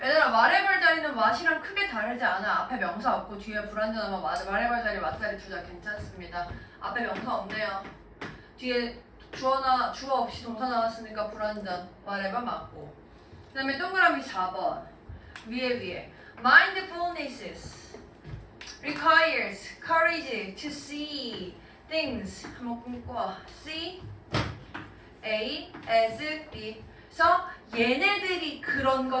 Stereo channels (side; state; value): both; identical; correlation 1.00